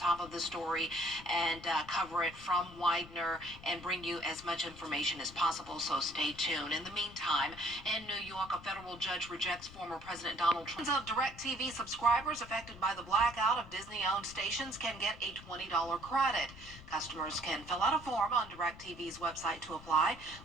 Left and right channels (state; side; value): noise; left; rumble, 18 dB below the sound